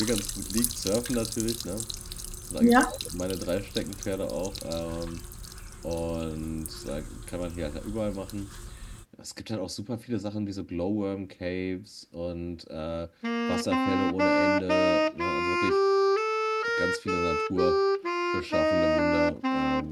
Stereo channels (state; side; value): identical; both; correlation 1.00